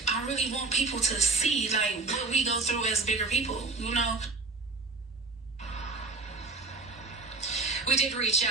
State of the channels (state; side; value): quieter; left; 3.7 dB